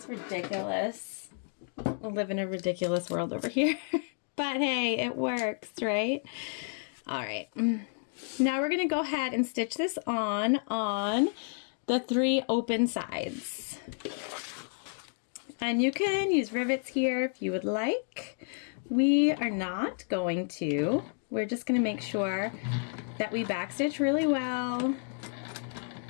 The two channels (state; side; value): silent; right; 57 dB below the other